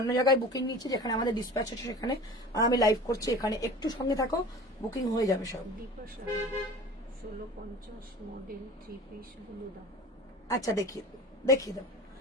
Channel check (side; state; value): both; normal; correlation 0.38